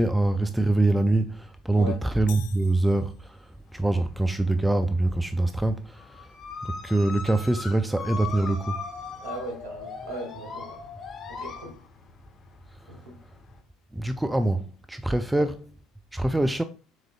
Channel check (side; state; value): both; normal; correlation 0.92